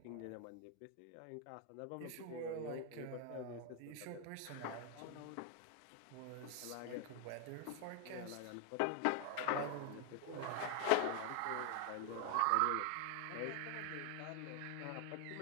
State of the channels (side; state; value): both; different; correlation 0.00